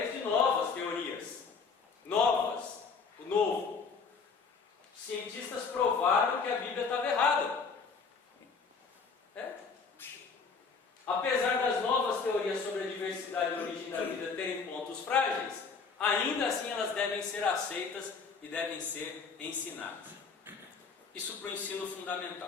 de novas teorias. Novas. O novo. Os cientistas provaram que a Bíblia estava errada. Apesar das novas teorias sobre a diversidade e a origem da vida terem pontos frágeis, ainda assim elas devem ser aceitas e devem ser ensinadas. Isso para o ensino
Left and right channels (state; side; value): quieter; right; 5.1 dB